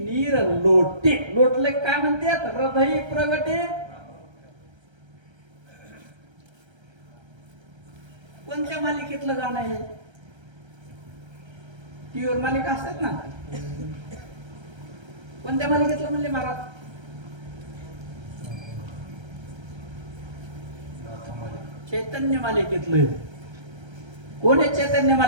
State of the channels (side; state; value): left; late; 1.3 ms